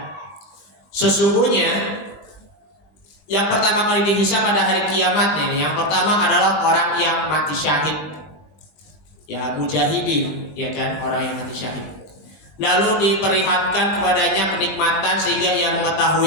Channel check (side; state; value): right; late; 21 ms